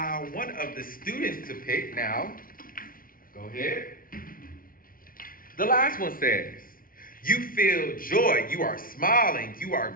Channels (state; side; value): late; right; 0.41 ms